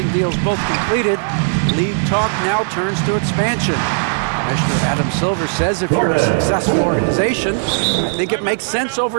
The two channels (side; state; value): left; silent; digital silence